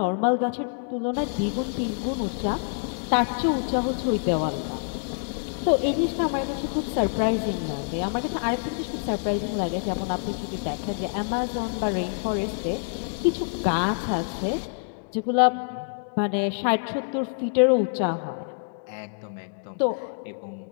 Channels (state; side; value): silent; right; digital silence